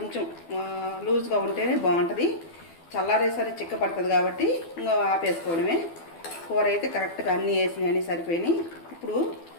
లూజ్గా ఉంటేనే బాగుంటుంది. చల్లారేసరి చిక్కపడుతుంది కాబట్టి ఇంకా ఆపేసుకోవడమే. కూర అయితే కరెక్ట్గా అన్నీ వేసినాయి, సరిపోయినాయి. ఇప్పుడు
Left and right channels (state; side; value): late; right; 12 ms